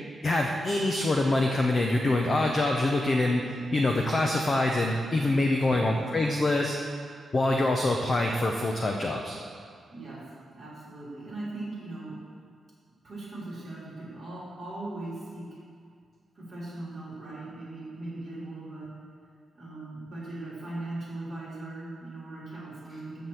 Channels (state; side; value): normal; both; correlation 0.89